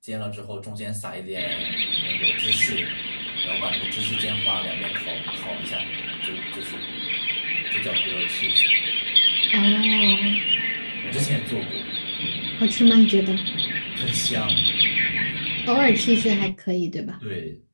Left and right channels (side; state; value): both; inverted; correlation -1.00